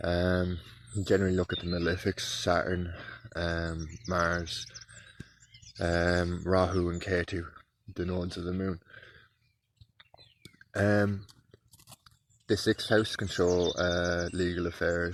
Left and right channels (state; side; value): identical; both; correlation 1.00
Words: You generally look at the malefics: Saturn, Mars, Rahu and Ketu, the nodes of the moon. The 6th house can show legal